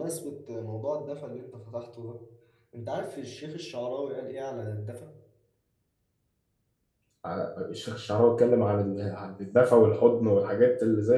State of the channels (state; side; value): identical; both; correlation 1.00